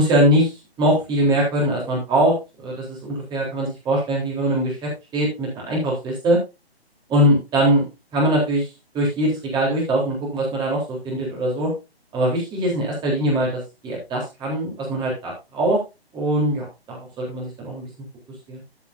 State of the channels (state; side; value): normal; both; correlation 0.10